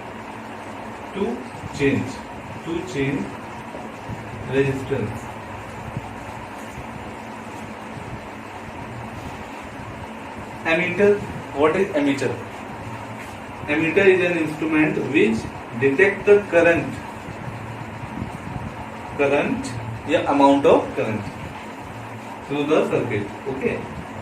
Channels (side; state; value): both; identical; correlation 1.00